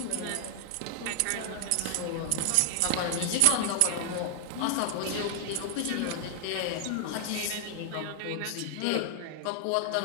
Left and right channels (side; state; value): both; different; correlation 0.00